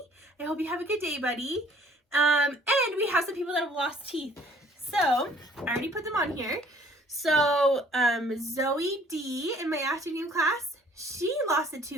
I hope you have a good day, buddy. And we have some people that have lost teeth. So, I already put them on here. So, Zoe D in my afternoon class, she lost a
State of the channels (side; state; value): both; normal; correlation 0.56